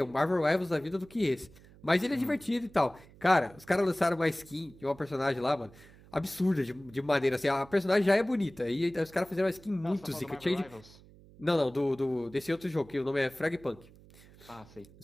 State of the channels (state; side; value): noise; right; hum, 23 dB below the sound